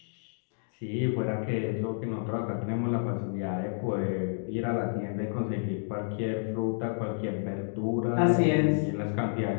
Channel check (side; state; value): right; silent; digital silence